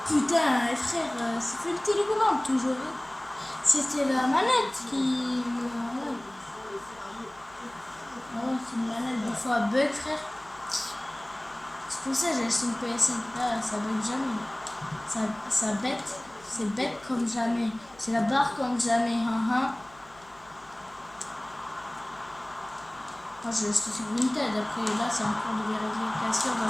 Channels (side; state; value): left; noise; hum, 27 dB below the sound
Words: Putain, frère, c'est fait une télécommande toujours. Hein. C'était la manette qui... Oh, c'est une manette, des fois bug, frère. C'est pour ça que j'ai acheté une PSN. Là, ça bug jamais. Ça bête. C'est bête comme jamais. C'est la barre comme jamais. Moi, je suis sur Vinted. Après, là, c'est en cours de vérification